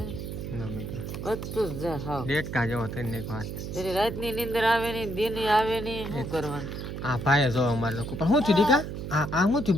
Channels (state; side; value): noise; right; hum, 7 dB below the sound